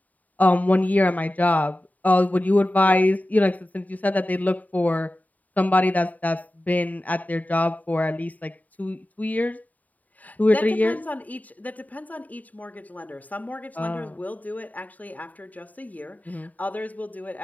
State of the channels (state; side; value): late; right; 0.075 ms